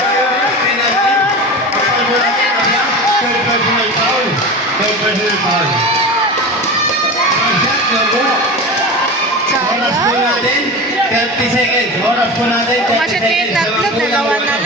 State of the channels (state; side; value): normal; both; correlation 0.28